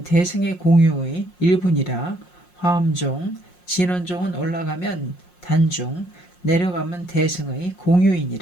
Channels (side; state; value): right; late; 5.6 ms